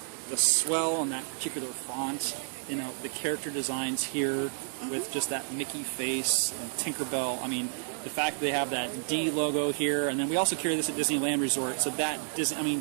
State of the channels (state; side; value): silent; left; digital silence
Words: the swell on that particular font, the character designs here with just that Mickey face and Tinkerbell. I mean, the fact that they have that D logo here, and then we also carry this at Disneyland Resort, so that